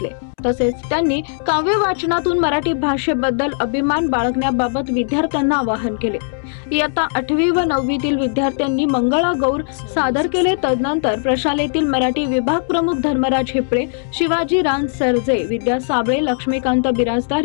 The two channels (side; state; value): right; silent; 67 dB below the other